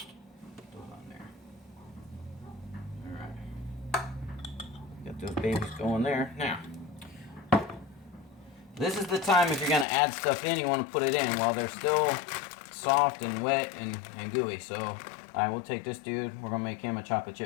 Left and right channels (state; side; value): drops out; right; at 9.9 s